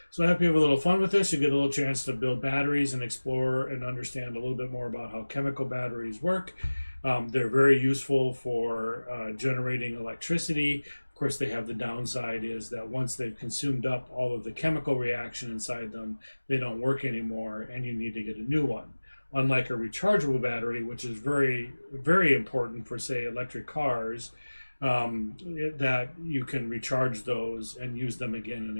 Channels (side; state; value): both; inverted; correlation -1.00